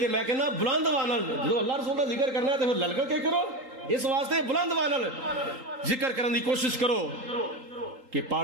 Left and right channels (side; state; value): left; late; 3.8 ms